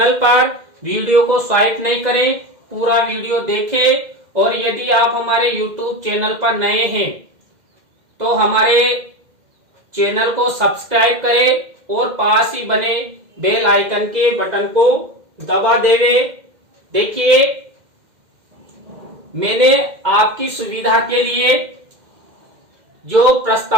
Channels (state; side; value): late; left; 2.1 ms